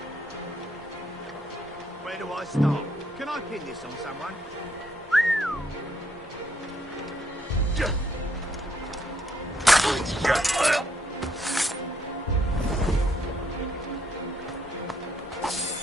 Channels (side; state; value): both; normal; correlation 0.72